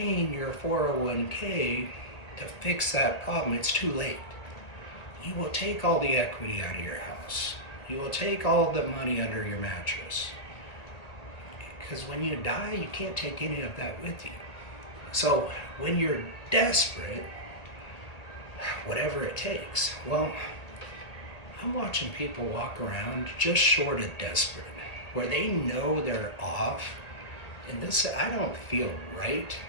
your 401k to fix that problem. It's too late. You will take all the equity out of your house. You will take all the money under your mattress. Because when you die, you can't take any of that with you. So when you're desperate, whatever it takes, well, I'm watching people walk around just short of desperate. where they know they're off, and this, I don't feel right.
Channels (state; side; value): late; right; 1.8 ms